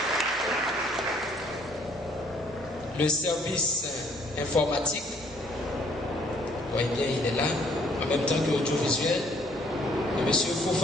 Le service informatique, vous voyez bien, il est là, en même temps que audiovisuel, de M.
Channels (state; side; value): normal; both; correlation 0.63